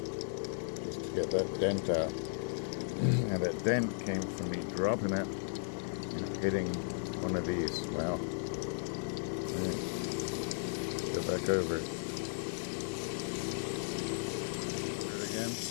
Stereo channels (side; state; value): right; silent; digital silence